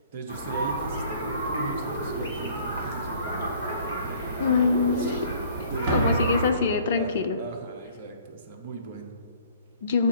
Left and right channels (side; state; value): both; inverted; correlation -0.55